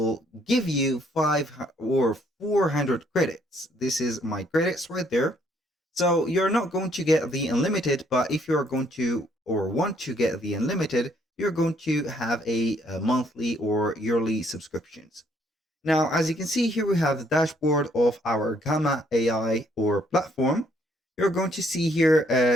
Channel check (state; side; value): normal; both; correlation 0.67